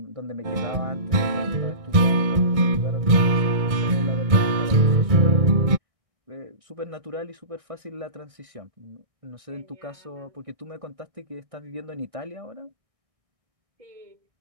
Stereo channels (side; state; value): left; late; 1.6 ms